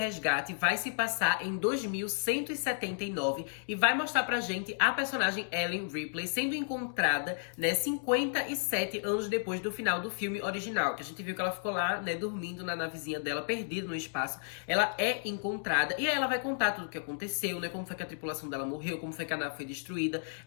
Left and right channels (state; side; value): silent; right; digital silence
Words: vai se passar em 2179 e vai mostrar pra gente a personagem Ellen Ripley sendo encontrada, né, 57 anos depois do final do filme original, que a gente viu que ela ficou lá, né, dormindo na navezinha dela, perdida no espaço. Ela é encontrada e aí ela vai contar tudo o que aconteceu, né, como foi que a tripulação dela morreu, como foi que a nave foi destruída.